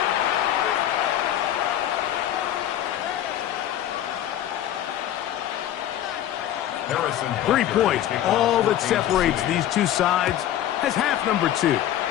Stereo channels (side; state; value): right; quieter; 11.9 dB